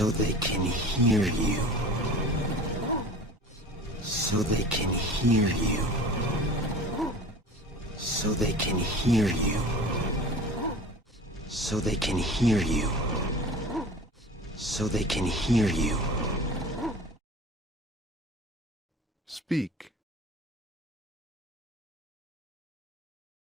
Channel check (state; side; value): normal; both; correlation 0.40